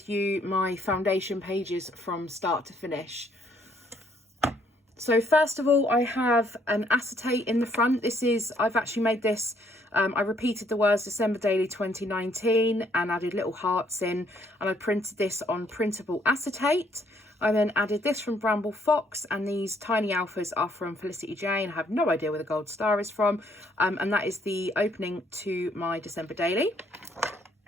you my foundation pages from start to finish. So first of all, I have an acetate in the front. I've actually made this, I repeated the words December Daily 2019 and added little hearts in, and I printed this on printable acetate. I then added this from Bramble Fox, and these tiny alphas are from Felicity Jane. I have no idea where the gold star is from, and that is the opening to my December Daily.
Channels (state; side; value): normal; both; correlation 0.67